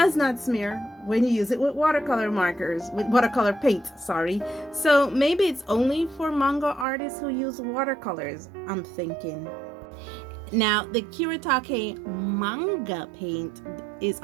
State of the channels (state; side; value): drops out; left; at 6.9 s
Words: not smear when you use it with watercolor markers, with watercolor paint, sorry. So maybe it's only for manga artists who use watercolors, I'm thinking. Now, the Kuretake manga paint is